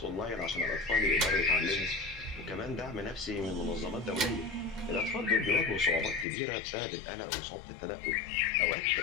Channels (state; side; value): drops out; right; at 6.2 s